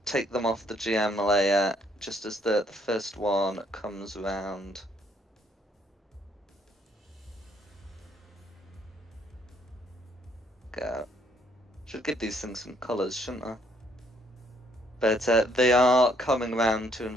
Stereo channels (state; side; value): normal; both; correlation 0.67